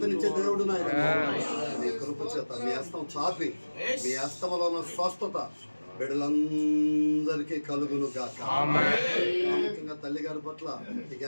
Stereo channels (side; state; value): both; inverted; correlation -1.00